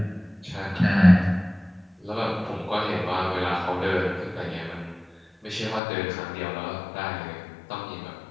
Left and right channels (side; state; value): right; drops out; at 5.8 s